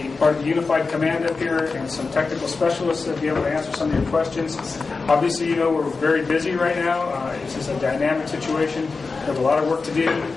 part of the Unified Command up here and some technical specialists that will be able to answer some of your questions. Obviously, you know we're very busy right now. This is a dynamic situation. We have a lot of work to do,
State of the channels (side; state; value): right; quieter; 4.3 dB